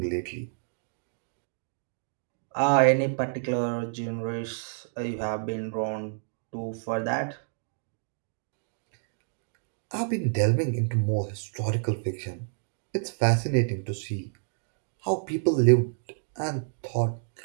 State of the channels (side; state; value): left; silent; digital silence